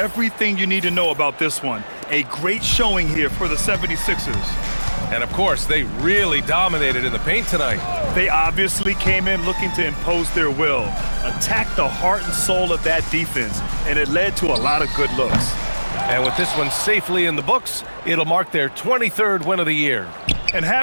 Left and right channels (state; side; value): inverted; both; correlation -1.00